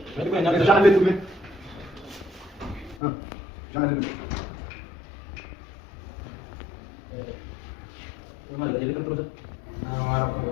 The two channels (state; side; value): drops out; right; at 3.0 s